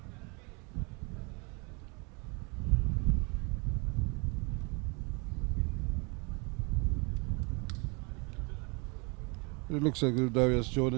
It looks like Darius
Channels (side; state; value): left; quieter; 31.0 dB